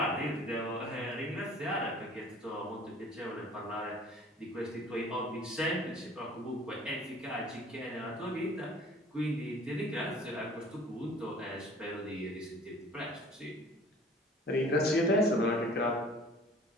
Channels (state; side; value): normal; both; correlation 0.50